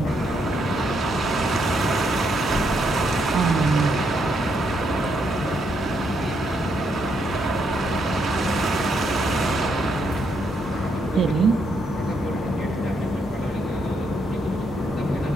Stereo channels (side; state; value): both; normal; correlation 0.76